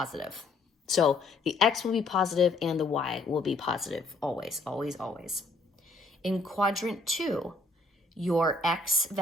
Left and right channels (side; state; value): right; quieter; 3.2 dB